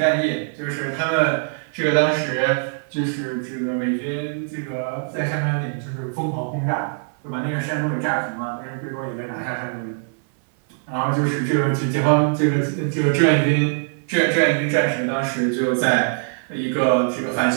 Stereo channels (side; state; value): left; silent; 59 dB below the other